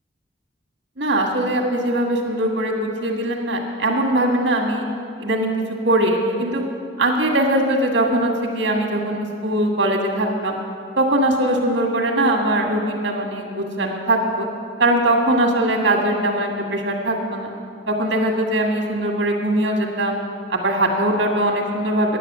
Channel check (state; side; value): normal; both; correlation 0.10